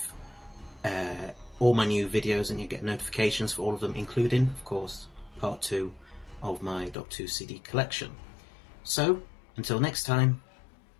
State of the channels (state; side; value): drops out; right; at 7.0 s